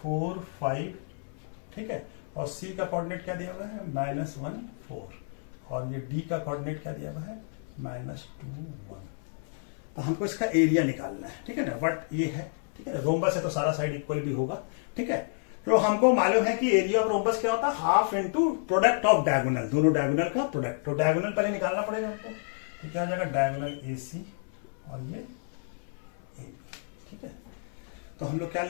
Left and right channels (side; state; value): right; silent; 58 dB below the other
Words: 5। ठीक है, और सी का कोऑर्डिनेट क्या दिया हुआ है -1 4, और ये डी का कोऑर्डिनेट क्या दिया हुआ है -2 1। तो हमको इसका एरिया निकालना है। ठीक है ना, बट ये है, ठीक है, रोम्बस है तो सारा साइड इक्वल भी होगा। ठीक है, तो हमको मालूम है कि एरिया ऑफ रोम्बस क्या होता है, half into product of diagonal, दोनों डायगोनल का प्रोडक्ट। तो डायगोनल पहले निकालना पड़ेगा हमको, तो क्या हो जाएगा डायगोनल AC और ये AB। ठीक है, तो हम लोग क्या